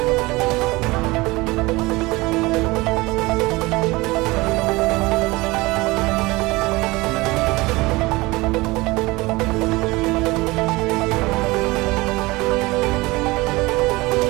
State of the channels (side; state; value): left; quieter; 22.0 dB